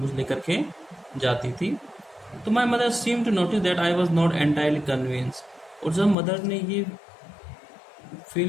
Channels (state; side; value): drops out; right; at 6.2 s